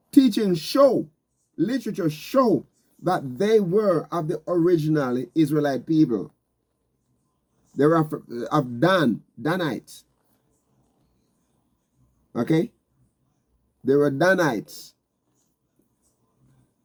teaching show, literature show that they were of the original Israelite people. They were of Danites. Okay? They were Danites.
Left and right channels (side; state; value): both; identical; correlation 1.00